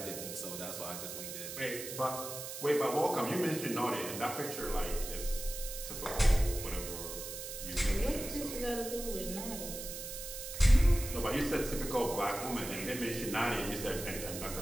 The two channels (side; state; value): right; noise; hiss, 8 dB below the sound